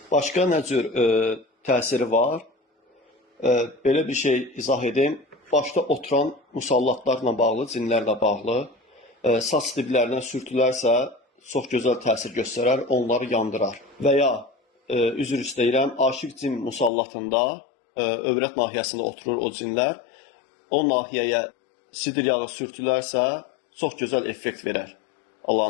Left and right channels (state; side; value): drops out; right; at 16.9 s